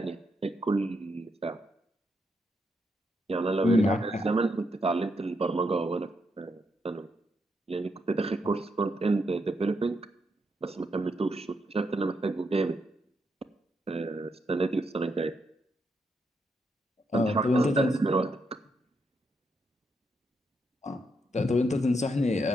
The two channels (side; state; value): both; normal; correlation 0.80